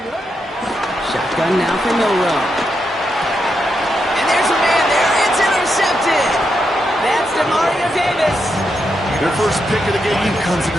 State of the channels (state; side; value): normal; both; correlation 0.83